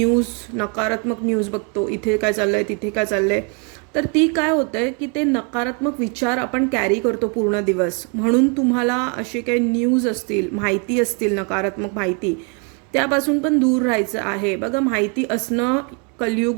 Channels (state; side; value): quieter; left; 36.1 dB